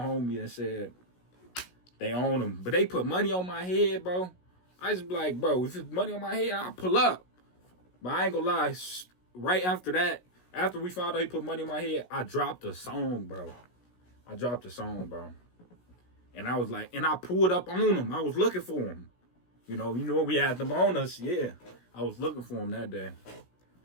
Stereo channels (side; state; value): right; late; 16 ms